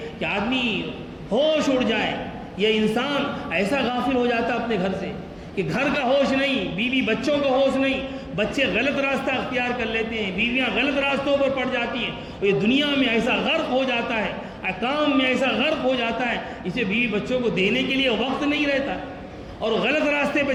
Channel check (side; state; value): both; identical; correlation 1.00